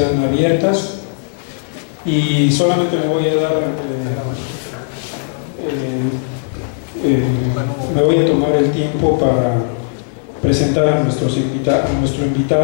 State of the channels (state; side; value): silent; right; digital silence